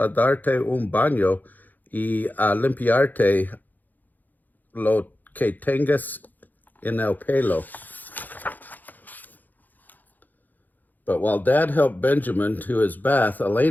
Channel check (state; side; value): late; right; 0.084 ms